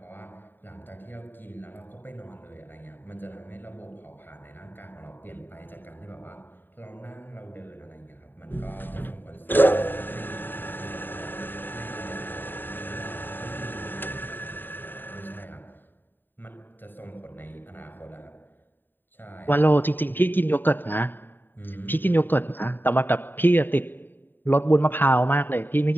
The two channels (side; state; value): right; late; 0.093 ms